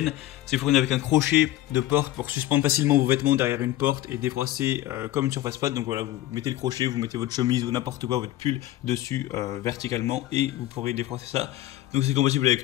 C'est fourni avec un crochet de porte pour suspendre facilement vos vêtements derrière une porte et défroisser comme une surface plate. Donc voilà, vous mettez le crochet, vous mettez votre chemise ou n'importe quoi, votre pull dessus verticalement et vous pourrez défroisser ça. Donc c'est compatible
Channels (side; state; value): right; quieter; 14.7 dB